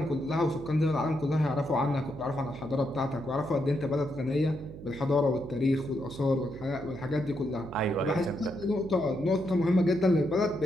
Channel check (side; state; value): right; noise; hum, 13 dB below the sound